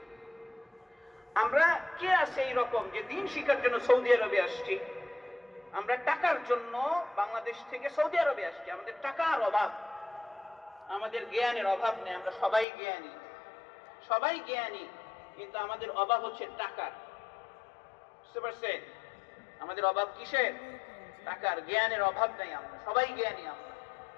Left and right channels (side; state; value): right; drops out; at 12.7 s